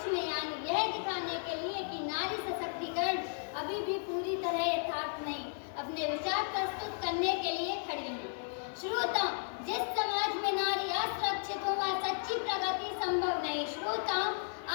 में, यानी यह दिखाने के लिए कि नारी सशक्तिकरण अभी भी पूरी तरह यथार्थ नहीं, अपने विचार प्रस्तुत करने के लिए खड़ी हूँ। श्रोताओं, जिस समाज में नारी असुरक्षित हो वहाँ सच्ची प्रगति संभव नहीं। श्रोताओं,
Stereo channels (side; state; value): right; silent; digital silence